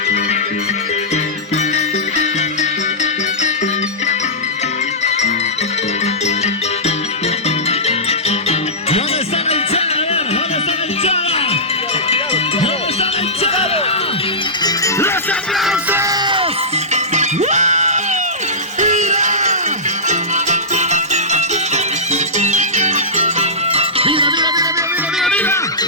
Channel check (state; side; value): normal; both; correlation -0.16